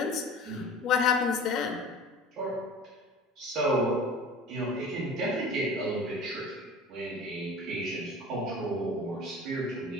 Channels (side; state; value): both; normal; correlation 0.39